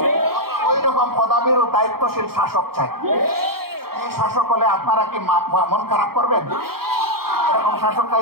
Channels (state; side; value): late; left; 0.94 ms